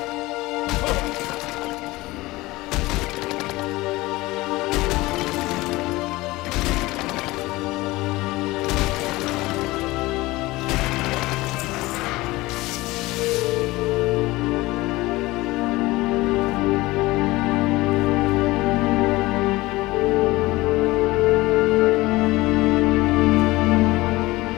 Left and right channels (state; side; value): quieter; right; 20.1 dB